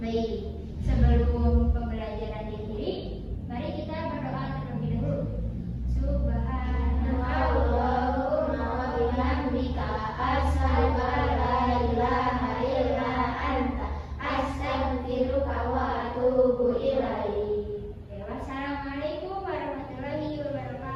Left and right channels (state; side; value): identical; both; correlation 1.00